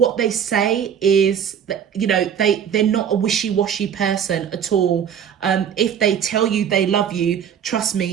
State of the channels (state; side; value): quieter; left; 8.4 dB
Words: they say is that, you know, they're not a wishy-washy person at all. If they tell you they love you, trust